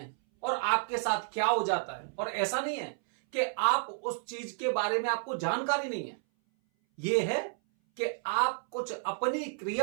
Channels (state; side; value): silent; left; 57 dB below the other